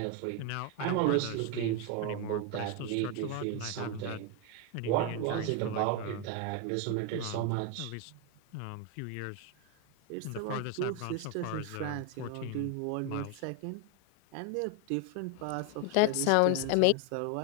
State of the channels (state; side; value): different; both; correlation 0.02